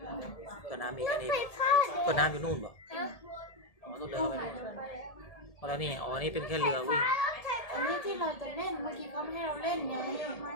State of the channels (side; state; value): right; late; 1.8 ms